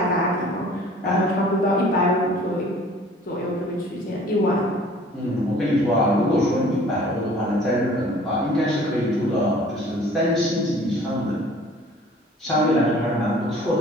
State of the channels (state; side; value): normal; both; correlation 0.51